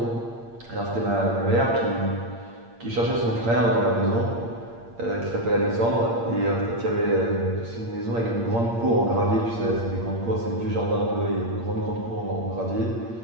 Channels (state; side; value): late; left; 8.7 ms